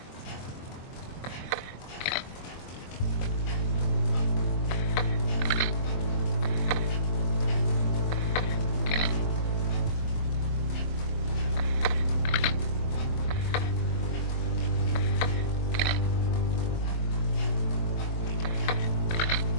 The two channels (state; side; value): late; right; 23 ms